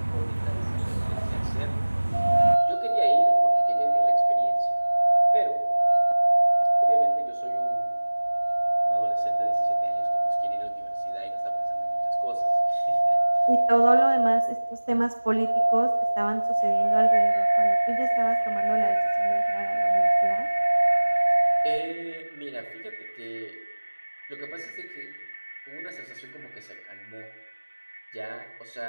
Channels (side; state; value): both; inverted; correlation -1.00